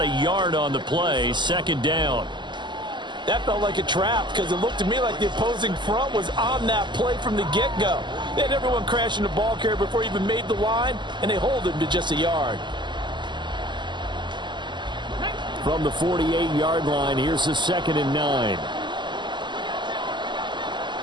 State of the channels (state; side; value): late; left; 0.22 ms